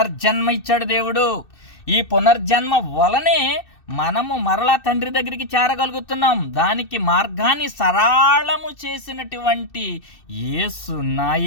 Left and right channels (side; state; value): right; late; 2.6 ms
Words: ఇచ్చాడు దేవుడు. ఈ పునర్జన్మ వలనే మనము మరలా తండ్రి దగ్గరికి చేరగలుగుతున్నాం. దానికి మార్గాన్ని సరళము చేసినటువంటి యేసు, నా